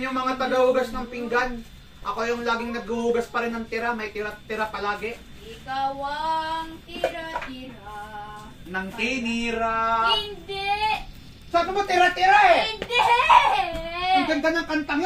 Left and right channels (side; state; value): both; identical; correlation 1.00